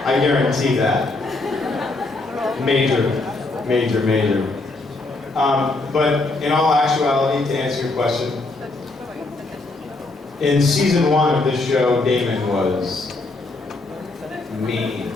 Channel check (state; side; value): quieter; right; 3.2 dB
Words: I guarantee that. Major. But in all actuality, to answer your question, in season 1 of this show, Damon was mean.